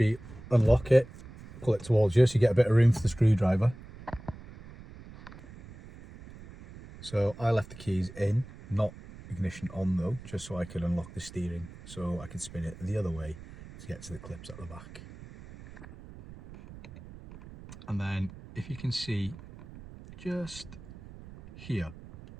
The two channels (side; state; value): right; noise; rumble, 17 dB below the sound